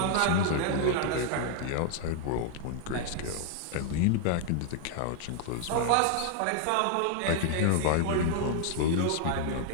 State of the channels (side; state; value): both; different; correlation 0.00